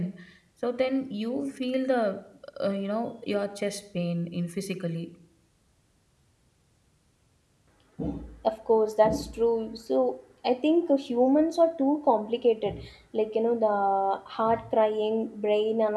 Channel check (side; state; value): both; identical; correlation 1.00